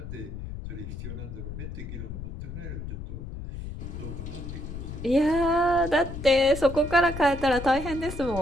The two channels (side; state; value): left; noise; rumble, 8 dB below the sound